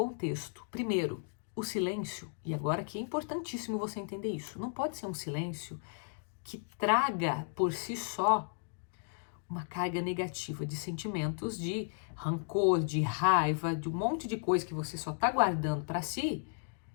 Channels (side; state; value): right; silent; digital silence